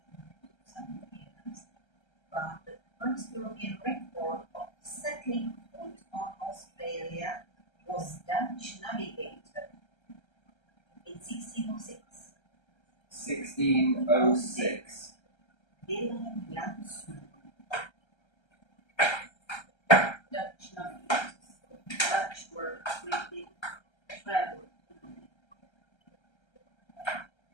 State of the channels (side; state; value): right; late; 1.3 ms